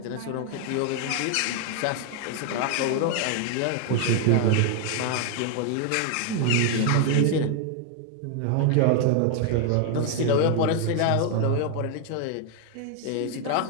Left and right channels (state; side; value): different; both; correlation 0.00